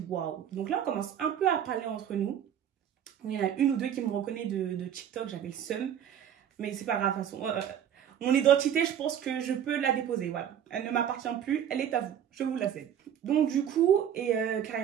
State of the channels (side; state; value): left; quieter; 9.5 dB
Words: waouh. Donc là, on commence un peu à parler entre nous. Il y en a une ou deux qui me reconnaissent de TikTok, j'avais le seum, mais c'est pas grave, de toute façon. Mon identité, je pense que je peux la déposer, voilà. Elle ne m'appartient plus, elle est à vous, je vous la cède. Donc du coup, et